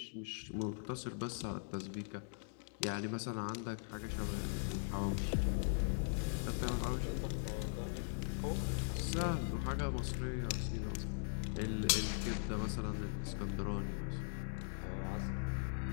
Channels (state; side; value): silent; right; digital silence